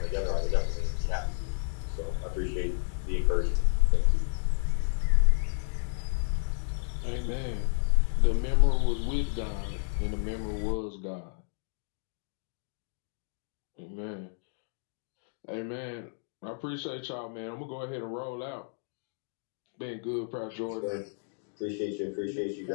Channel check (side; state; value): right; silent; digital silence